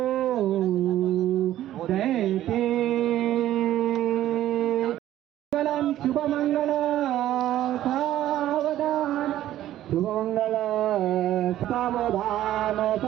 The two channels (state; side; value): quieter; left; 13.1 dB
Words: दैते शुभमंगल सावधान. शुभमंगल सावधान